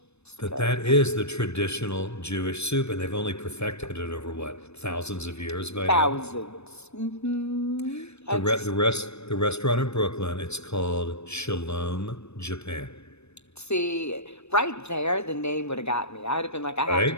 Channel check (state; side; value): late; right; 0.81 ms